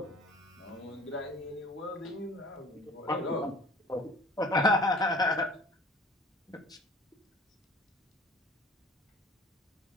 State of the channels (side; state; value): both; normal; correlation 0.47